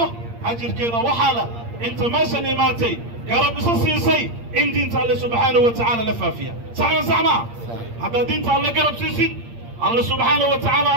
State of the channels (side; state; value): left; late; 8.6 ms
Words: ajirkeeda waxaala inta meeshan imaatay garab isa siisay in diinta Allah subhanahu wa ta'ala la faafiya saxma hadda diinta Allah garab siisid Allah subhanahu wa ta'ala